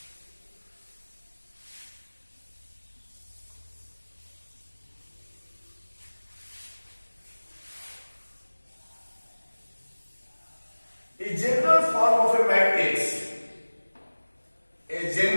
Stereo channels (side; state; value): both; inverted; correlation -1.00